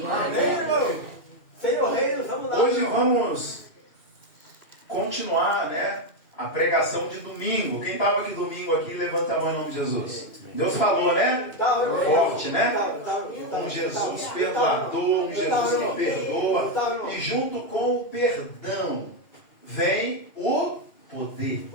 irmão. Senhor Reino, vamos lá. Hoje vamos continuar, né, a pregação de domingo. Quem estava aqui domingo aqui, levanta a mão em nome de Jesus. Deus falou, né? Forte, né? Um Jesus perdoador, um Jesus que perdoa. E junto com o perdão vem o poder.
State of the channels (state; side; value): late; right; 2.6 ms